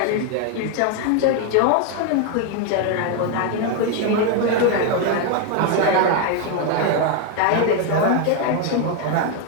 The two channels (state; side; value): different; both; correlation 0.01